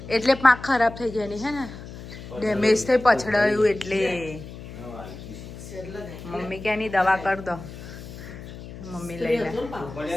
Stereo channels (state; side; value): noise; left; hum, 13 dB below the sound